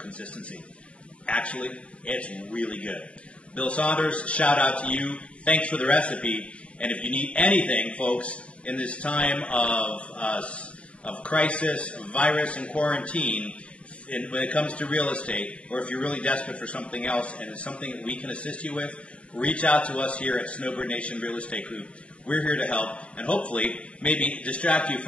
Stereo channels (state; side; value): late; right; 0.062 ms